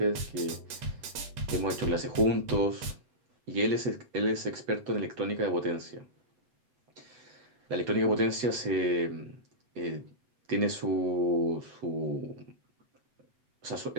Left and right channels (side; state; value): left; late; 8.0 ms